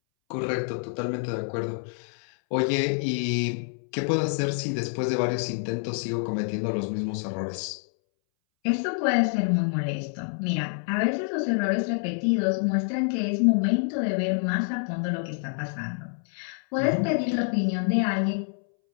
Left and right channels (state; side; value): silent; right; 60 dB below the other